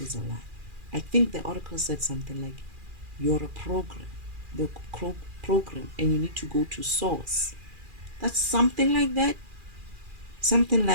is a lie. I think the Oracle said something like, you're a program, the program, and you need to go to source. That's something like that. Something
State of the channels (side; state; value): left; late; 2.4 ms